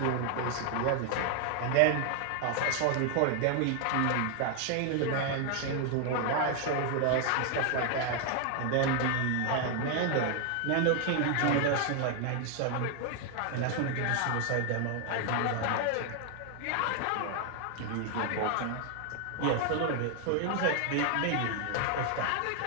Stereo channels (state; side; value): different; both; correlation 0.00